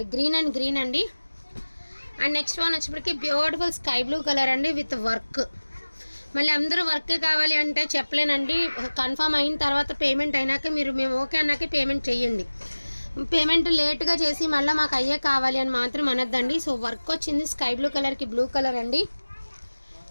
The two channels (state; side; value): inverted; both; correlation -1.00